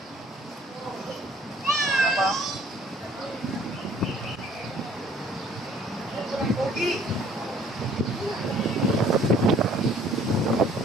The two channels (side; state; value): both; normal; correlation 0.57